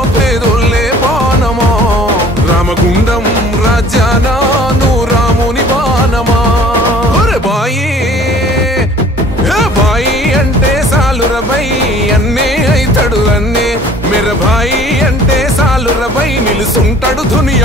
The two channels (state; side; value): normal; both; correlation 0.51